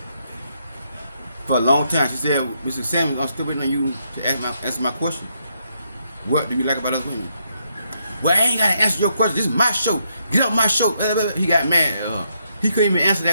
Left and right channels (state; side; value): inverted; both; correlation -0.77